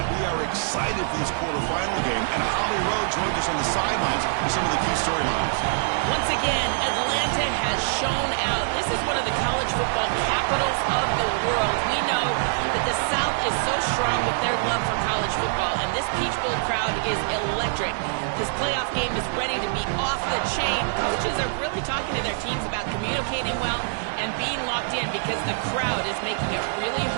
We are excited for this quarterfinal game, and Holly Rowe joins us on the sidelines with some of the key storylines. Once again, Atlanta has shown out. This is one of the college football capitals of the world. We know that the South is so strong with their love for college football, and this Peach Bowl crowd is electric. This playoff game is ready to be off the chain. Coaches are really talking to their teams about communicating well and being locked in because the crowd is making it really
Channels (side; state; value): left; silent; 56 dB below the other